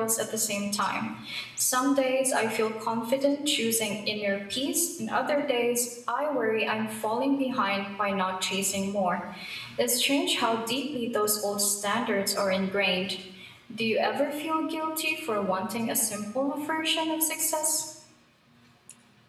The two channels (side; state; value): both; identical; correlation 1.00